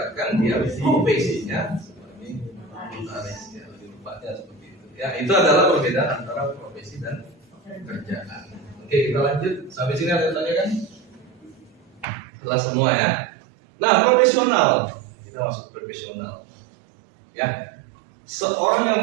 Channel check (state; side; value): drops out; left; at 12.1 s